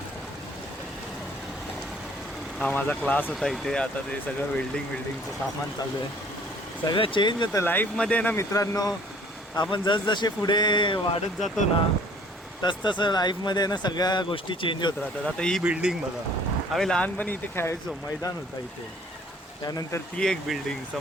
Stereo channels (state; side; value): normal; both; correlation 0.56